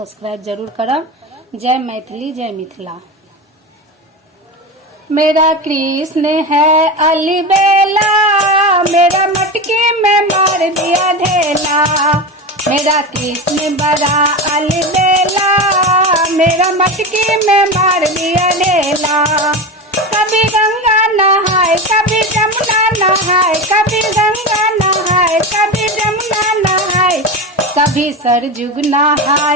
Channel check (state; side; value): normal; both; correlation 0.22